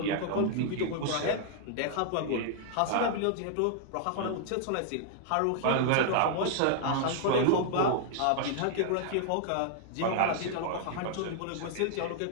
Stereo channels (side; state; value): both; different; correlation -0.01